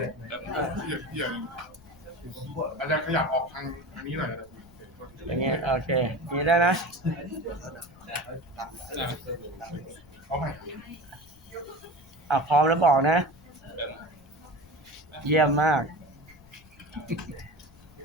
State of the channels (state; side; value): noise; left; rumble, 26 dB below the sound